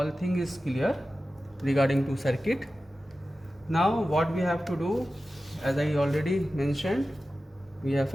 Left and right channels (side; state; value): both; normal; correlation 0.94